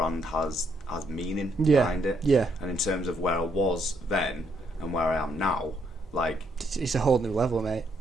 has meaning behind it. Yeah. And in terms of where I was then and where I am now, like, it's a whole new level, mate.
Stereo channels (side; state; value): both; normal; correlation 0.73